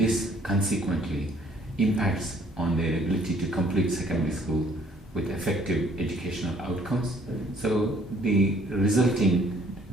consequently impacts on their ability to complete secondary school with effective educational outcomes. So the resulting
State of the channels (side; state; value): both; normal; correlation 0.61